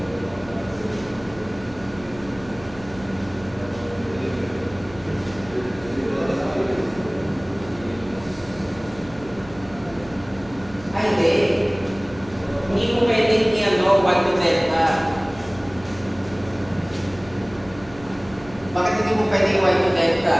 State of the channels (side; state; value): right; noise; hum, 19 dB below the sound